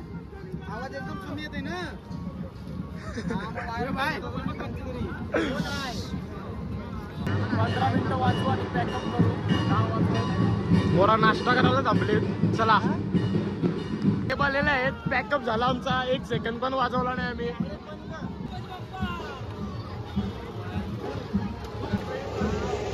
आवाज एकदम कमी येते ना. मोरा नाश्ता करायला थांबले. चला हे बोललेले आहेत पॅकअप झाला आमचा. 1 सेकंड पण वाजवला नाही आम्ही.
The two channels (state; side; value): identical; both; correlation 1.00